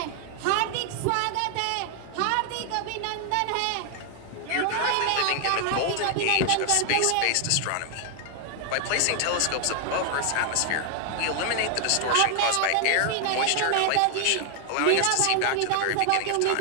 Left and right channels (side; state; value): both; different; correlation 0.00